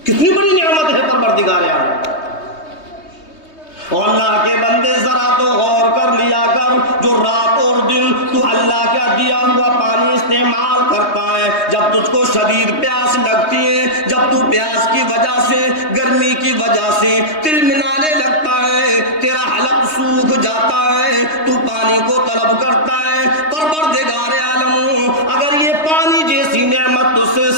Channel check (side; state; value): right; late; 3.2 ms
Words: کتنی بڑی نعمت ہے پروردگار عالم. اور اللہ کے بندے ذرا تو غور کر لیا کر، جو رات اور دن تو اللہ کا دیا ہوا پانی استعمال کرتا ہے، جب تجھ کو شدید پیاس لگتی ہے، جب تو پیاس کی وجہ سے، گرمی کی وجہ سے تلملانے لگتا ہے، تیرا حلق سوکھ جاتا ہے، تو پانی کو طلب کرتا ہے. پروردگار عالم اگر یہ پانی جیسی نعمت تجھ سے